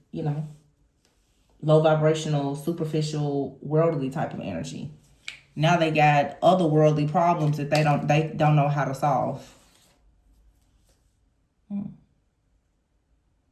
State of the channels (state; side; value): identical; both; correlation 1.00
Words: low vibrational, superficial, worldly type of energy. Now they got other worldly problems that they don't know how to solve.